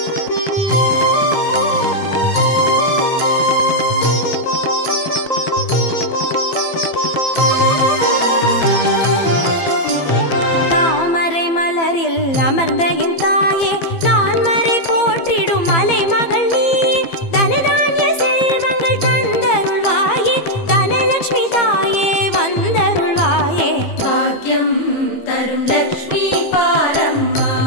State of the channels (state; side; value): late; right; 15 ms